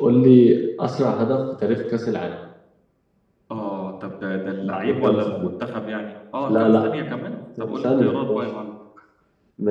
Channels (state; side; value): identical; both; correlation 1.00